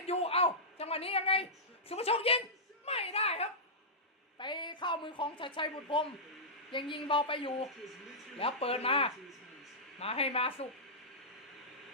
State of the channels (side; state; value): both; normal; correlation -0.14